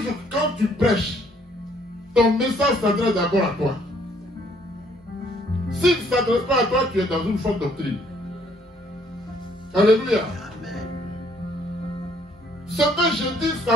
quand tu prêches, ton message s'adresse d'abord à toi. S'il ne s'adresse pas à toi, tu es dans une fausse doctrine. Alléluia. Amen. Ce que je dis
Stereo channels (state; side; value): normal; both; correlation 0.65